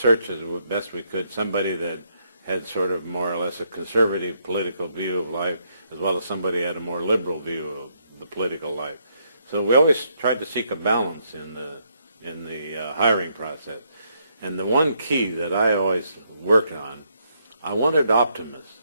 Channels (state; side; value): inverted; both; correlation -0.74